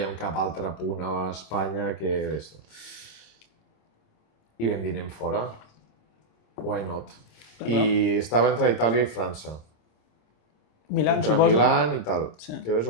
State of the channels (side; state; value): right; late; 26 ms